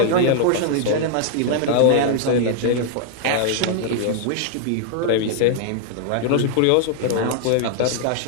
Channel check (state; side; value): different; both; correlation 0.00